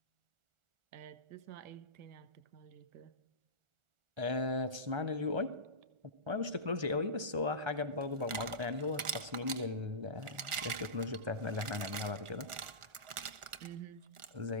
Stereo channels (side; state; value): left; late; 1.4 ms